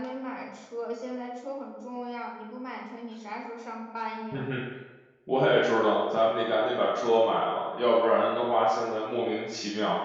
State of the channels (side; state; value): both; identical; correlation 1.00